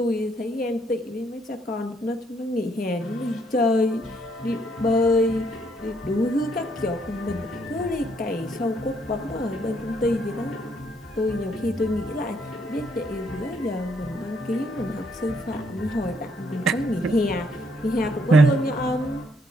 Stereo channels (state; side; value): normal; both; correlation 0.70